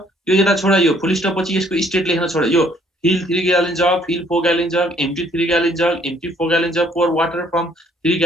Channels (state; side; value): normal; both; correlation 0.63